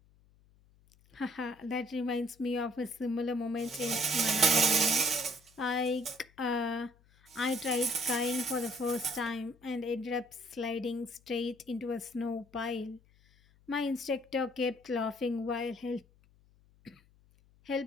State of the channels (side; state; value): left; noise; hum, 30 dB below the sound